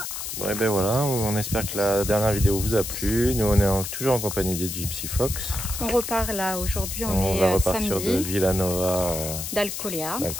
Bon et ben voilà, on espère que la dernière vidéo vous a plu. Nous on est toujours en compagnie des Gypsy Fox. On repart là, aujourd'hui On va repartir de Villanova d'Alcolea.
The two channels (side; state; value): left; noise; hiss, 6 dB below the sound